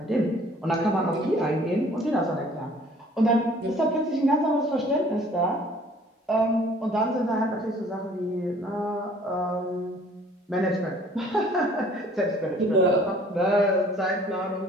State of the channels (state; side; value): normal; both; correlation 0.54